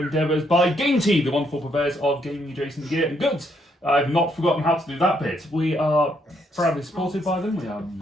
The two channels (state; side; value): normal; both; correlation 0.73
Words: by Game Tea, the wonderful purveyors of gaming adjacent gear and goods. I've not forgotten how to do that bit. We are proudly supported by them. We are